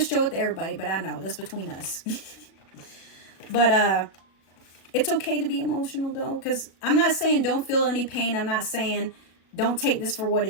show it to everybody, but I know that's between us. But it's okay to be emotional though, because I'm not saying don't feel any pain. I'm not saying don't take this for what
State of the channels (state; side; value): late; right; 36 ms